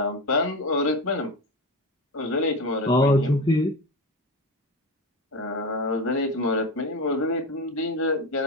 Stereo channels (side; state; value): both; normal; correlation 0.21